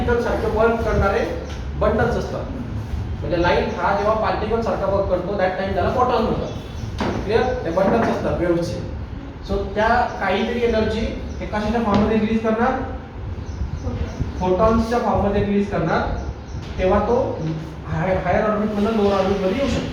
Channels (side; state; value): both; identical; correlation 1.00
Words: सारखे वर्क करणारे बंडल्स असतात. म्हणजे लाईट हा जेव्हा पार्टिकल सारखा वर्क करतो दॅट टाइम त्याला फोटॉन म्हणतात. क्लिअर? ते बंडल्स असतात वेव्हचे. सो त्या काहीतरी एनर्जी हे कशाच्या फॉर्म मध्ये रिलीज करणार, फोटॉन्सच्या फॉर्म मध्ये रिलीज करणार. तेव्हा तो हायर ऑर्बिट मधून लोअर ऑर्बिट मध्ये येऊ